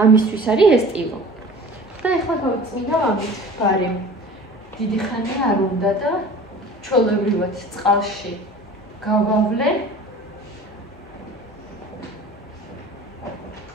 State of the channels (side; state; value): both; normal; correlation 0.42